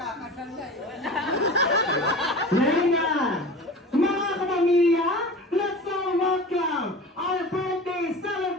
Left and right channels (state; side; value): normal; both; correlation 0.35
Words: Ngayon na, mga kapamilya, let's all welcome our birthday